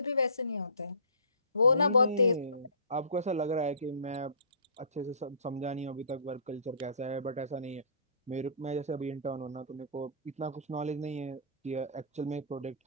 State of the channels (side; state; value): both; inverted; correlation -0.45